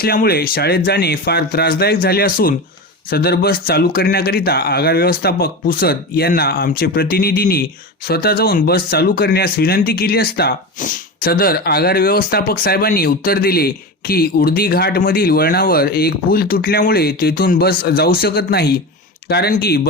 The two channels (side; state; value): both; normal; correlation 0.24